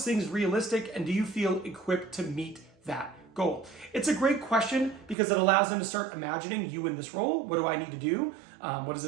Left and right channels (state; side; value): drops out; left; at 5.2 s